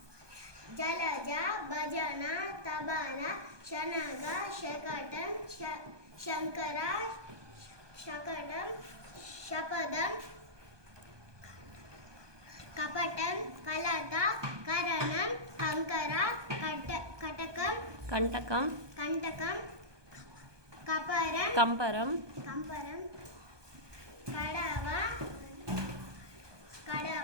జలజ భజన తబన శనగ శకటం శంకర శకటం శపదం కపటం కలత కరణం కంకర కటకం కంటకం కంటకం కపరం కంపరం కంపరం కడవ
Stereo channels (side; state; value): left; late; 1.2 ms